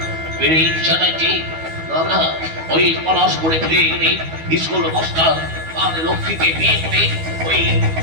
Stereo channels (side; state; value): left; late; 12 ms